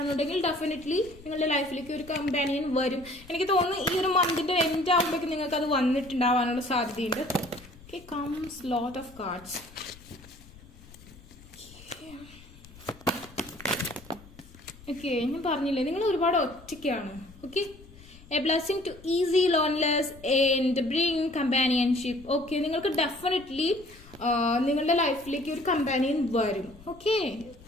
ഡെഫിനറ്റ്ലി നിങ്ങളുടെ ലൈഫിലേക്ക് ഒരു കമ്പാനിയൻ വരും. എനിക്ക് തോന്നുന്നു ഈ ഒരു മന്തിന്റെ എൻഡ് ആകുമ്പോഴേക്കും നിങ്ങൾക്ക് അത് വന്നിട്ടുണ്ടാവാനുള്ള സാധ്യതയുണ്ട്. Okay, comes lot of cards. Okay, ഞാൻ പറഞ്ഞില്ലേ നിങ്ങൾ ഒരുപാട് ഒറ്റയ്ക്കാണ്. Okay, a blessing to ease loneliness and bring companionship. Okay, നിങ്ങൾക്ക് ഡെഫിനറ്റ്ലി നിങ്ങളുടെ ലൈഫിലേക്ക് ഒരു കമ്പാനിയൻ വരും. ഓക്കെ,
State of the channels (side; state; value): left; noise; rumble, 21 dB below the sound